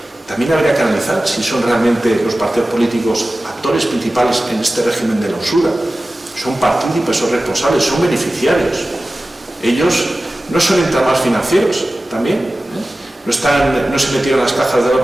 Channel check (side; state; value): both; normal; correlation 0.96